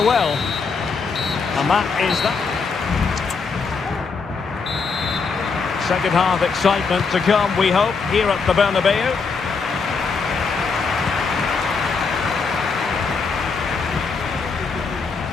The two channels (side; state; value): right; quieter; 4.9 dB